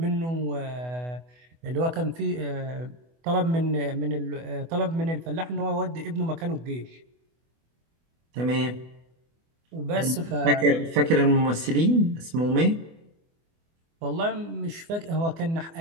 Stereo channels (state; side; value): late; left; 24 ms